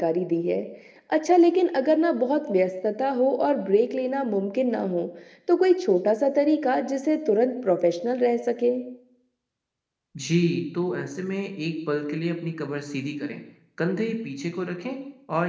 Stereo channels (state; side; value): identical; both; correlation 1.00